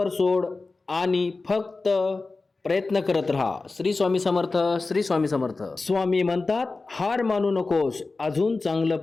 सोड आणि फक्त प्रयत्न करत राहा. श्री स्वामी समर्थ. श्री स्वामी समर्थ. स्वामी म्हणतात, हार मानू नकोस, अजून चांगलं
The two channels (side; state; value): right; quieter; 3.7 dB